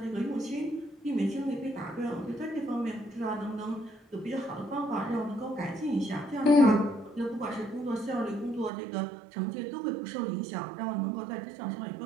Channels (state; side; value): drops out; left; at 8.7 s